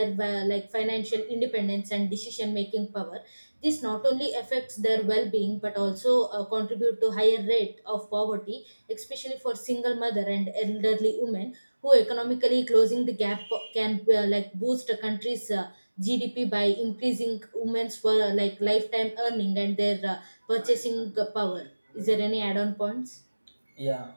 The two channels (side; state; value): both; inverted; correlation -1.00